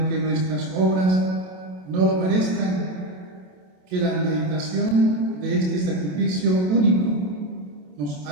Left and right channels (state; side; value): late; left; 27 ms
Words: nuestras obras no lo merezcan, que la meditación de este sacrificio único nos